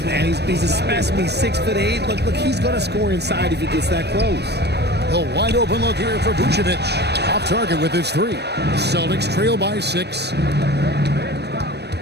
man. He's a specimen. He's 6'8". Look, he's going to score inside if he gets that close. A wide open look here for Vucevic. Off target with his three. Celtics trail by 6.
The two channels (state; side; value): late; left; 0.49 ms